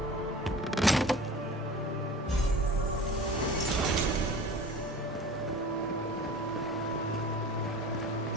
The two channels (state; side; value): normal; both; correlation 0.39